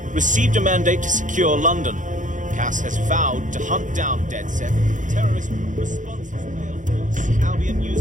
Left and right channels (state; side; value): late; left; 0.37 ms